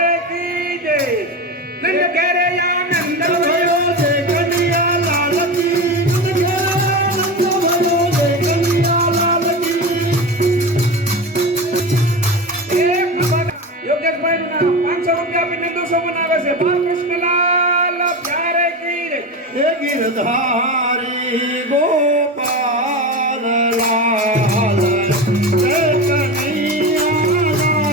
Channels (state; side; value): normal; both; correlation 0.24